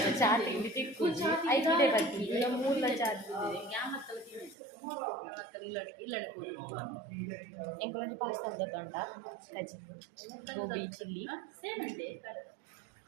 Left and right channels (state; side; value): drops out; left; at 4.5 s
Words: ಚಾ ತಿಂಡಿ ತಿಕ್ಕುಜಿ 5 ಗಂಟೆ ಬರ್ತೀವಿ ಇಲ್ಲ 3 ಚಾ ಎಂಕೊಂದು ಪಾರ್ಸಲ್ ತಗೊಂಡ ಕಜಿ ಗೋಬಿ ಚಿಲ್ಲಿ